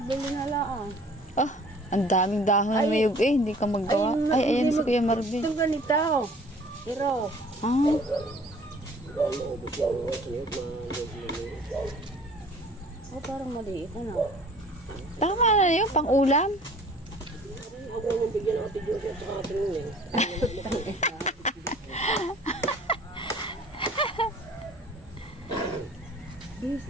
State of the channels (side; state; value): both; normal; correlation 0.50